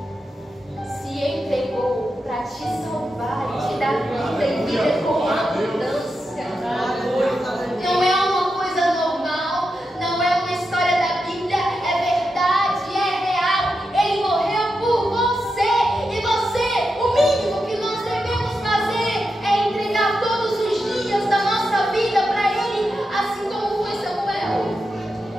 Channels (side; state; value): both; normal; correlation 0.88